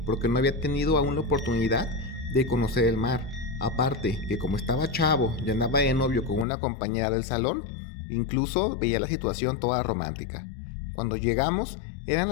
porque no había tenido aún la oportunidad de conocer el mar. Aparte que como estaba chavo y andaba de novio con una compañera del salón, incluso veía la situación toda romántica. Cuando llegamos eran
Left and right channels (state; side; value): drops out; right; at 6.5 s